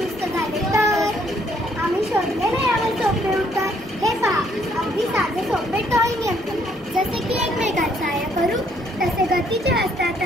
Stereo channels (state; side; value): normal; both; correlation 0.67